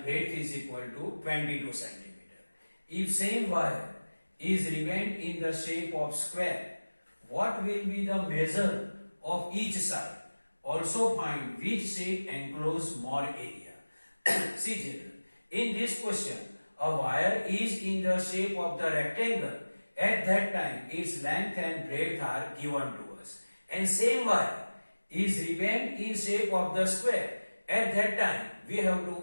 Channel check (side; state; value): both; inverted; correlation -1.00